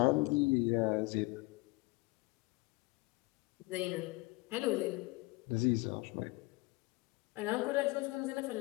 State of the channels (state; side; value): quieter; right; 23.4 dB